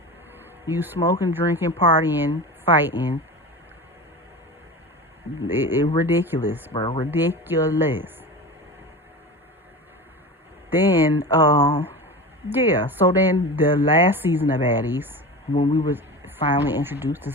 You smoking, drinking, partying, fighting. It ridiculous, bro. Ridiculous. Then, yeah. So then the last season of Baddies, when we was finally introduced to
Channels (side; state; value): both; normal; correlation 0.30